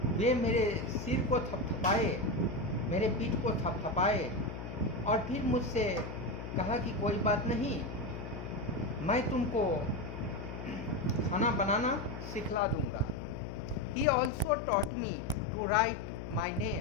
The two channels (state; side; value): noise; left; hum, 8 dB below the sound